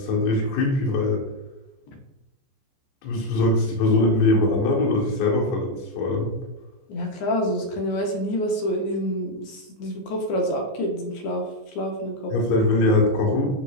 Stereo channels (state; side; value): late; right; 15 ms